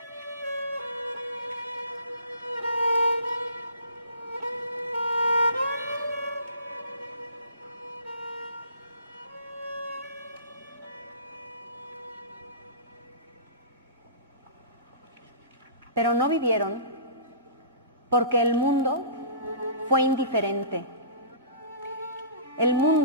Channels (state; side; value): inverted; both; correlation -0.42